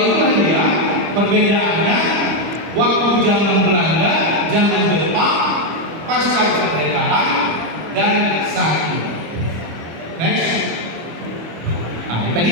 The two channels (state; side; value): late; left; 25 ms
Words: dia perbedaannya waktu zaman Belanda, zaman Jepang, pasca kemerdekaan, dan saat ini. Next. Nah,